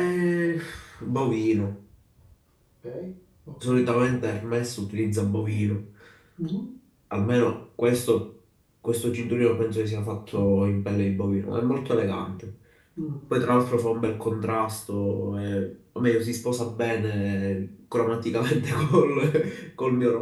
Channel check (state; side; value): identical; both; correlation 1.00